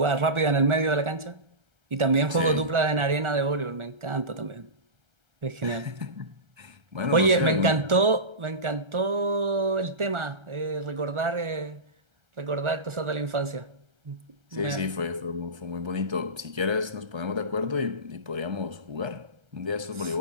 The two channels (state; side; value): late; left; 1.4 ms